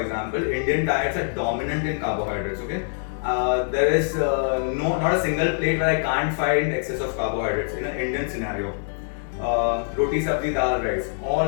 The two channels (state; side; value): silent; right; digital silence